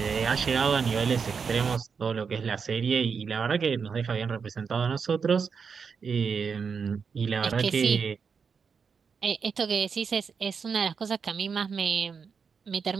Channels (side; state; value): left; quieter; 5.9 dB